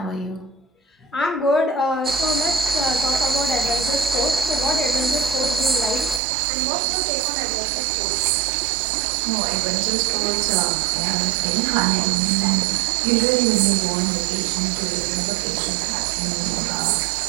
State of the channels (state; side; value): drops out; left; at 6.2 s